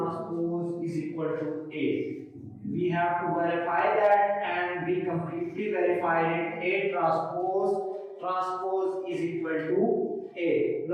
is equal to A. We have to verify that and we completely verified it. A transpose is equal to A.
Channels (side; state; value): both; identical; correlation 1.00